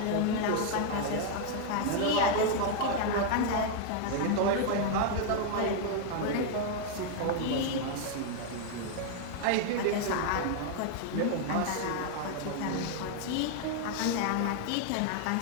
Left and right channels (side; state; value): both; different; correlation 0.00